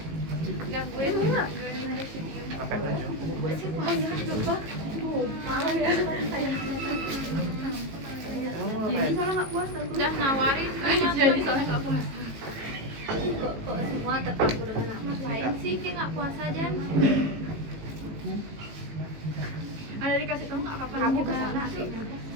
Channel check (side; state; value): left; late; 18 ms